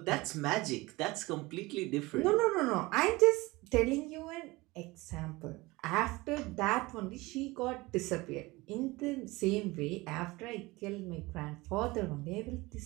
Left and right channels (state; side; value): quieter; left; 21.7 dB